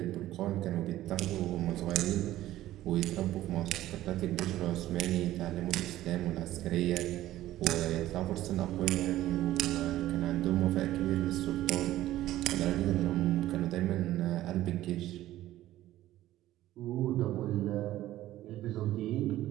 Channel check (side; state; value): left; quieter; 14.6 dB